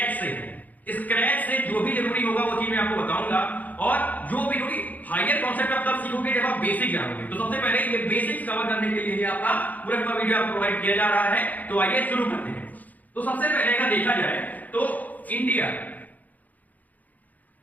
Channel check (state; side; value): late; right; 0.080 ms